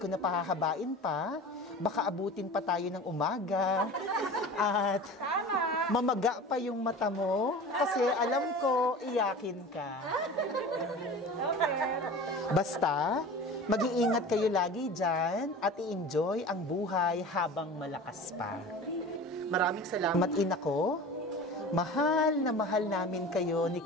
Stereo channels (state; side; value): normal; both; correlation 0.36